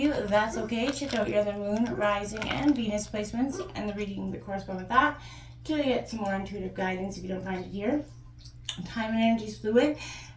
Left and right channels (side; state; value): both; identical; correlation 1.00